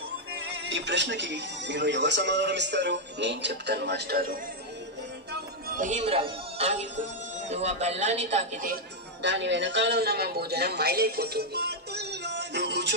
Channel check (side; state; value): both; normal; correlation -0.01